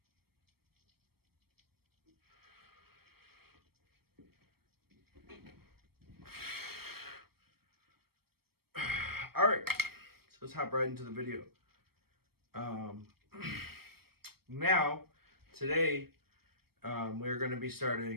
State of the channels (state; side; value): late; left; 0.95 ms